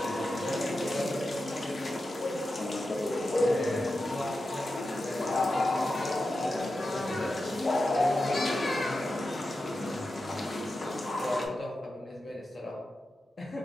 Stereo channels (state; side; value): normal; both; correlation 0.91